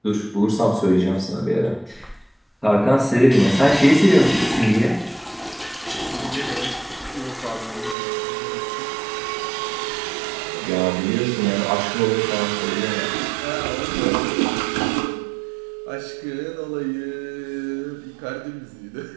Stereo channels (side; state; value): left; drops out; at 8.0 s